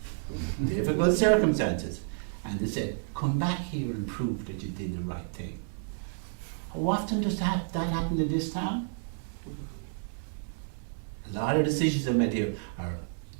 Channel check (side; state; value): left; silent; 57 dB below the other